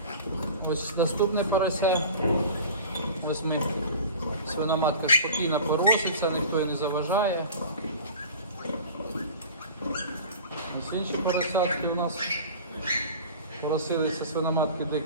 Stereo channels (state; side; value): inverted; both; correlation -0.39